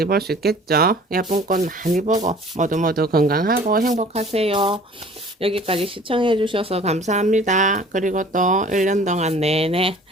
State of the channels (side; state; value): both; normal; correlation 0.49